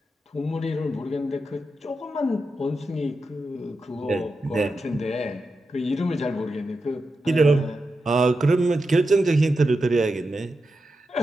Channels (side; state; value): both; normal; correlation 0.89